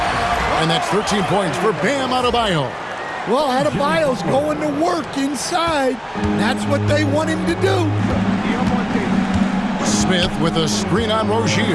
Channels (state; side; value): identical; both; correlation 1.00